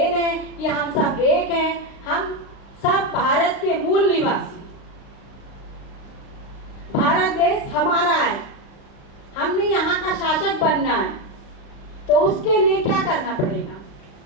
है कि हम सब एक हैं, हम सब भारत के मूल निवासी, भारत देश हमारा है, हमने यहाँ का शासक बनना है, तो उसके लिए क्या करना पड़ेगा,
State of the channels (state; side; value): late; right; 35 ms